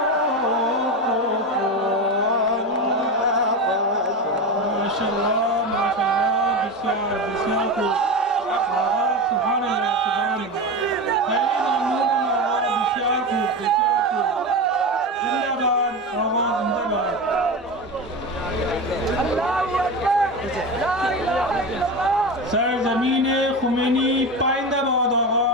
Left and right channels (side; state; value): both; normal; correlation 0.22